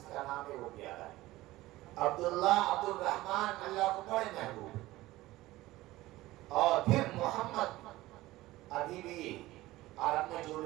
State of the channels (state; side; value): quieter; left; 17.7 dB